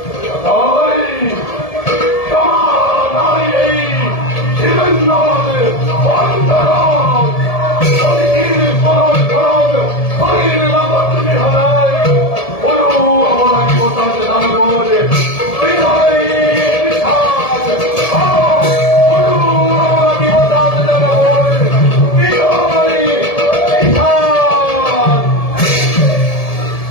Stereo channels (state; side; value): late; right; 1.7 ms